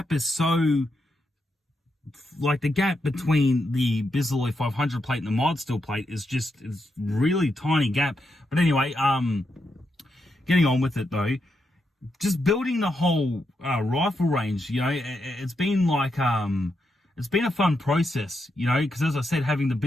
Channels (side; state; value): both; normal; correlation 0.83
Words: is so, like, the gap between the Bisley 500 plate and the mod steel plate is really tiny gap. But anyway, getting on with it though, just building the whole rifle range, it's been like it's been a fun process, because as I said, having the